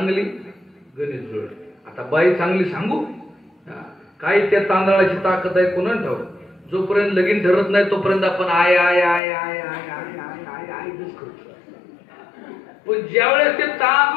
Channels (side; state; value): right; drops out; at 9.2 s